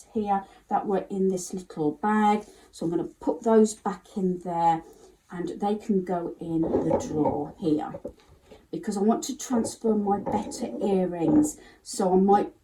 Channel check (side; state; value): both; identical; correlation 1.00